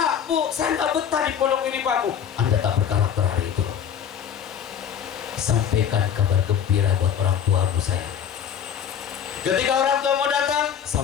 Bu, saya nggak betah di pondok ini, Pak, Bu. Anda tak berkarakter hari itu. Sampaikan kabar gembira buat orang tua Bu saya. Ketika orang tua mau datang,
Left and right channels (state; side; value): quieter; right; 8.5 dB